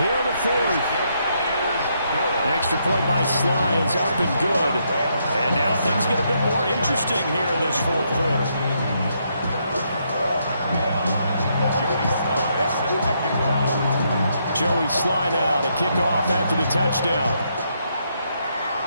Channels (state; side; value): inverted; both; correlation -0.76